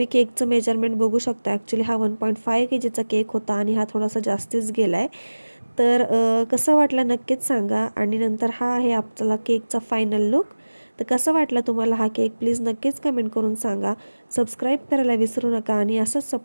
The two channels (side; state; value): both; inverted; correlation -1.00